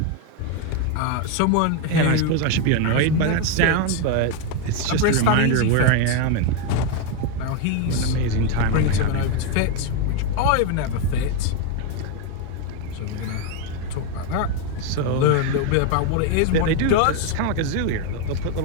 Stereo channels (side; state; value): both; different; correlation 0.02